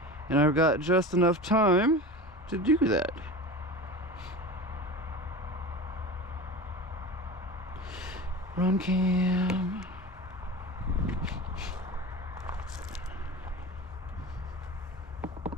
and I've got just enough time to do that. Runcam.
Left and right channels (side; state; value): both; normal; correlation 0.32